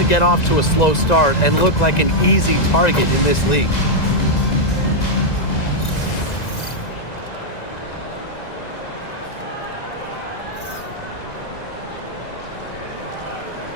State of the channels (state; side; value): late; right; 1.9 ms